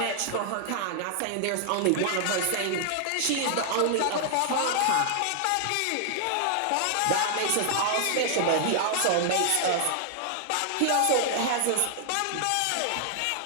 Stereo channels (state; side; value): different; both; correlation 0.00